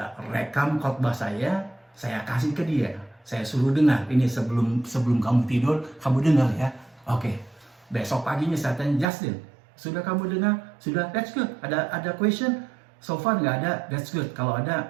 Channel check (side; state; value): left; drops out; at 9.1 s